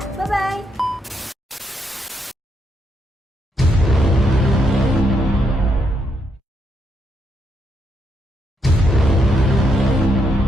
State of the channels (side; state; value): both; normal; correlation 0.78